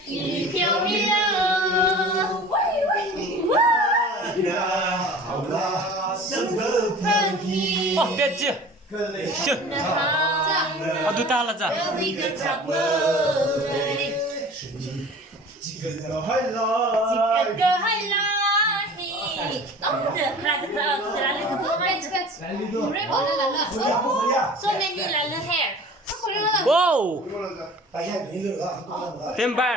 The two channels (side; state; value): both; normal; correlation 0.42